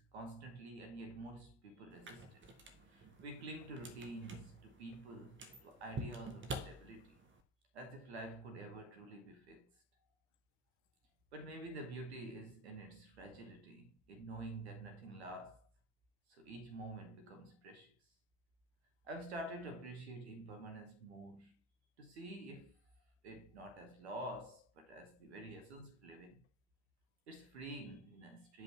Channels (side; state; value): both; normal; correlation 0.28